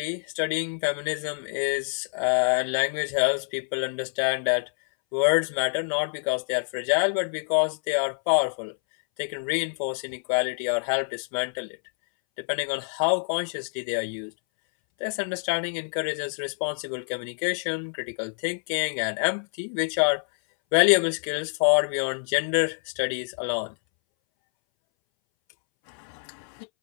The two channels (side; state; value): right; silent; 61 dB below the other